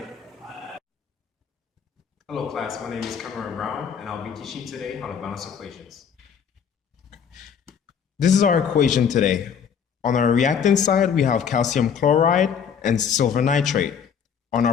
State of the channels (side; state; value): right; quieter; 7.4 dB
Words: Hello class, my name is Cameron Brown and I'll be teaching today how to balance equations. This is our equation today. On our reactant side, we have calcium chloride and silver nitrate. On